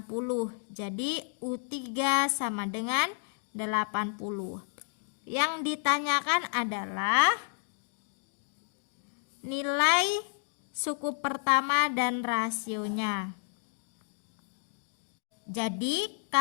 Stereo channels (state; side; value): silent; right; 57 dB below the other